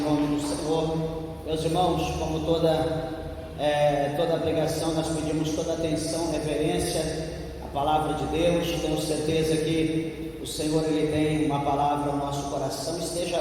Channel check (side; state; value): both; identical; correlation 1.00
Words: do Senhor. Meus irmãos, como toda pregação, nós pedimos toda atenção, reverência à palavra de Deus. Tenho certeza que o Senhor, Ele tem uma palavra ao nosso coração. Esteja